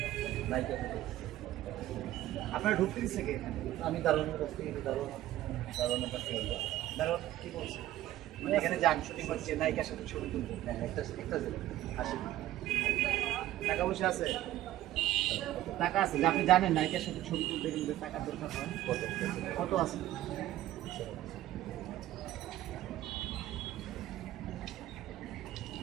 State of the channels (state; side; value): quieter; left; 14.4 dB